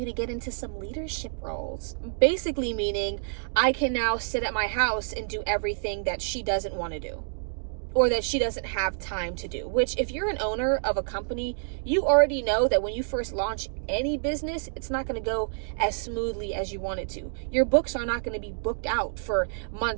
to get into some leadership roles. Basically meaning I can now sit at my house and do everything that she doesn't want to do, or that she doesn't have time to do. Which, if you're an owner of a company, you already know that when you first launch any business, it's not going to go as smoothly as you want it to. Your books are not going to be booked out for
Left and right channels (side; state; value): left; silent; digital silence